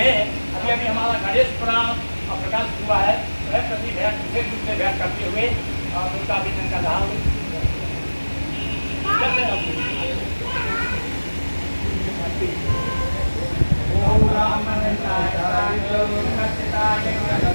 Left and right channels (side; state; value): both; inverted; correlation -1.00